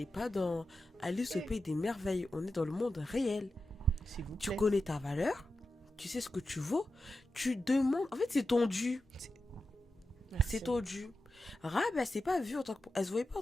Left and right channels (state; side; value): normal; both; correlation 0.91